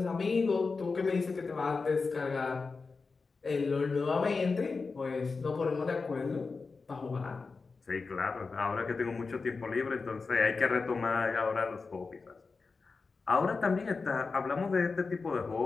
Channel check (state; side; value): quieter; right; 4.4 dB